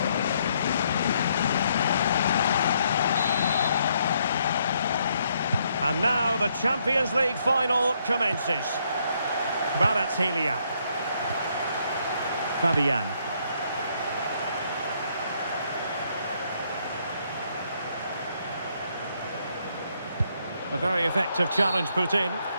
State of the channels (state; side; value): inverted; both; correlation -0.72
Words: And now the Champions League Final commences. Kvaratskhelia. Fabian. A very effective challenge put in.